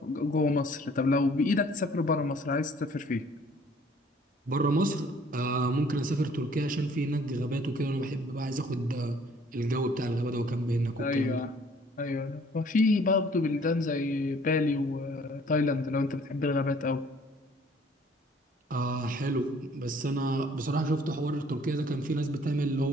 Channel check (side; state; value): both; normal; correlation 0.57